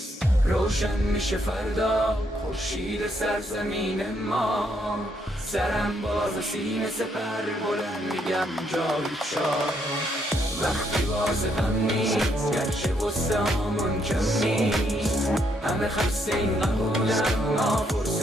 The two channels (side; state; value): both; normal; correlation 0.74